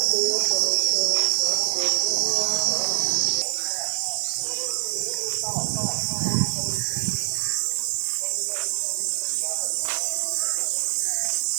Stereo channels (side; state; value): left; silent; 62 dB below the other